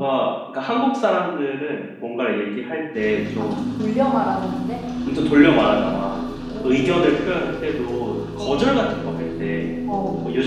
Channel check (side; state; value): both; identical; correlation 1.00